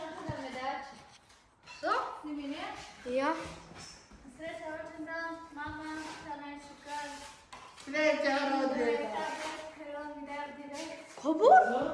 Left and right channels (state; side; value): identical; both; correlation 1.00